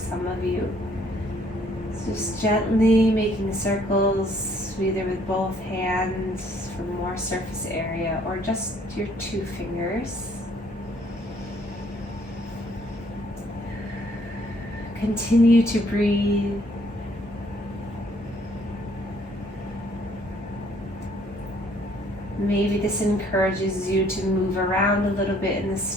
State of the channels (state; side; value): normal; both; correlation 0.63